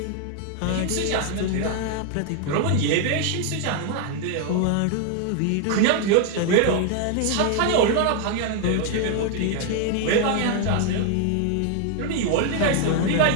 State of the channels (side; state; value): both; different; correlation 0.00